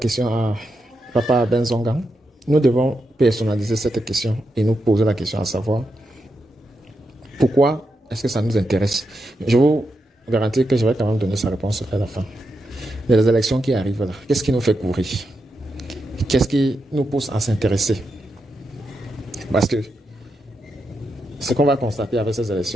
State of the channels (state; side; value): normal; both; correlation 0.85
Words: à Papa Ben Zongan, nous devons personnaliser cette question et nous poser la question à savoir pourquoi est-ce que ça nous intéresse. Je vous garantis que je vais quand même donner sa réponse à la fin. Les élections qui arrivent là, qu'est-ce qui nous fait courir? Qu'est-ce qui nous pousse à s'intéresser? Parce que ce qu'on va constater avec ces